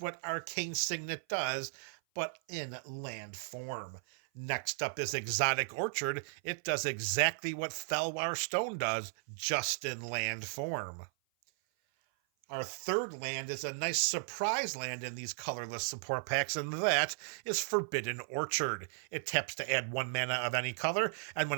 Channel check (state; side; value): silent; left; 54 dB below the other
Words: Arcane Signet does, but in land form. Next up is Exotic Orchard. It does exactly what Felwar Stone does, just in land form. Our 3rd land is a nice surprise land in these colorless support packs, and that is Forbidden Orchard. It taps to add 1 mana of any color, and